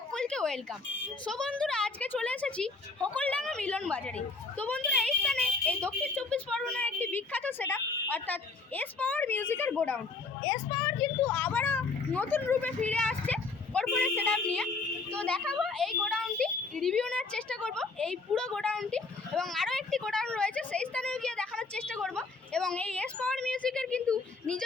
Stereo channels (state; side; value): quieter; right; 4.1 dB